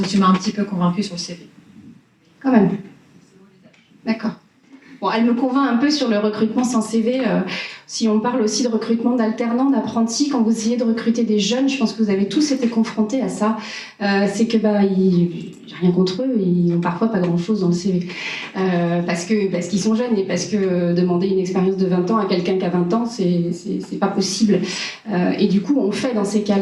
que tu m'as un petit peu convaincue sur le CV. Quand même. D'accord. Bon, elle me convainc un peu sur le recrutement sans CV. Si on parle aussi de recrutement d'alternants, d'apprentis, quand vous essayez de recruter des jeunes, je pense que vous avez tous été confrontés à ça. C'est que j'ai rien contre eux, ils n'ont parfois pas grand-chose dans le CV. Parce qu'ils sont jeunes et parce que demander une expérience de 20 ans à quelqu'un qui a 20 ans, c'est pas possible. Et du coup, on fait dans ces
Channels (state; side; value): identical; both; correlation 1.00